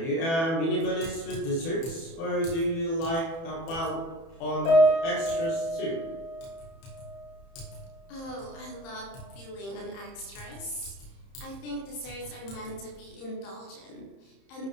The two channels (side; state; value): right; late; 30 ms